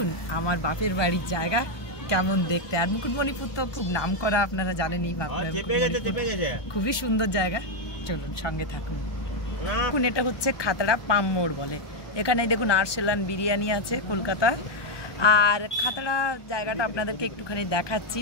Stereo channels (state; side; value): late; right; 1.2 ms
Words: আমার বাপের বাড়ির জায়গা কেমন দেখতে। আর মুকুটমণিপুর তো খুব নাম করা, আপনারা জানেনই। খুবই সুন্দর জায়গা, চলুন সঙ্গে থাকুন। দেখুন এটা হচ্ছে খাতড়া পাম মোড় বলে। এখানে দেখুন আরসালান বিরিয়ানি আছে কলকাতা। আর খাতড়া জায়গাটা আপনাদেরকে একটুখানি দেখাচ্ছি,